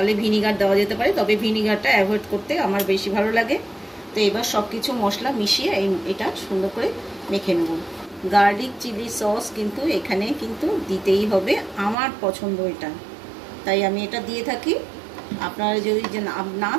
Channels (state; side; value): drops out; left; at 12.0 s